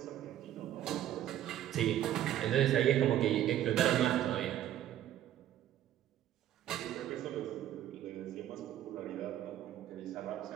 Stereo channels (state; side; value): quieter; left; 12.0 dB